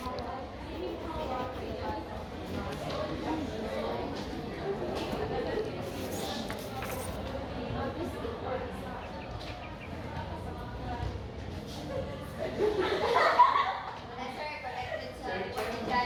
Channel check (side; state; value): both; identical; correlation 1.00